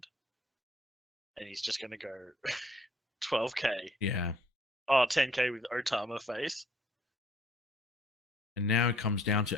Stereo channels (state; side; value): normal; both; correlation 0.61